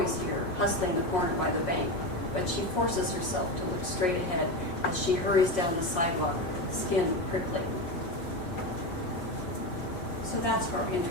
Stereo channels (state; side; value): late; right; 5.6 ms